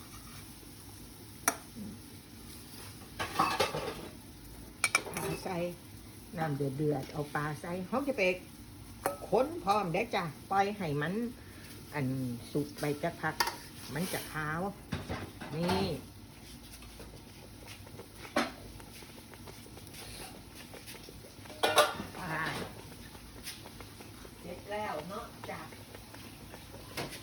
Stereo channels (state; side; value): identical; both; correlation 1.00